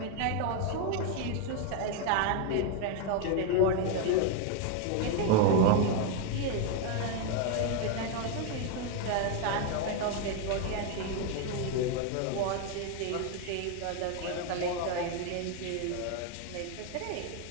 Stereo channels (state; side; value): different; both; correlation 0.01